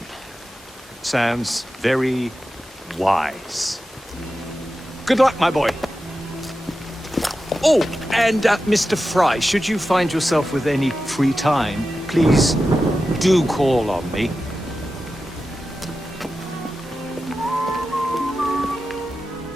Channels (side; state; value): both; normal; correlation 0.92